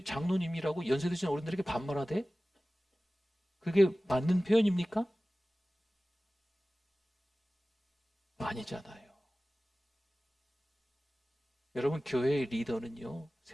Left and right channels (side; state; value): both; normal; correlation 0.97